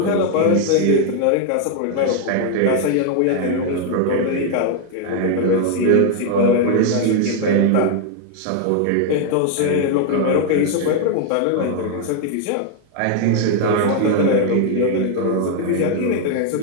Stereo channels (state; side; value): different; both; correlation 0.00